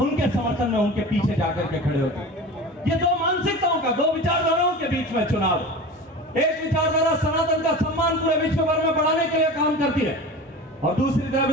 उनके समर्थन में उनके पीछे जाकर के खड़े होते हैं। ये 2 मानसिकताओं का, 2 विचारधाराओं के बीच में चुनाव। एक विचारधारा सनातन का सम्मान पूरे विश्व भर में बढ़ाने के लिए काम करती है, और दूसरी तरफ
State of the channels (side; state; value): both; normal; correlation 0.33